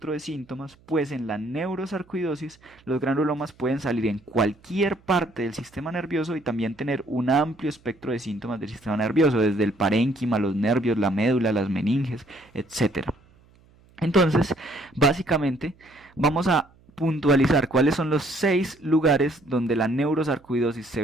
de síntomas, pues en la neurosarcoidosis los granulomas pueden salir en cualquier parte del sistema nervioso y también tener un amplio espectro de síntomas del sistema nervioso, desde el parénquima, los nervios, la médula, las meninges, etcétera. Entonces, básicamente, vamos a puntualizar cuáles son los 6 lugares donde la neurosarcoidosis se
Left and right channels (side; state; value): right; noise; hum, 30 dB below the sound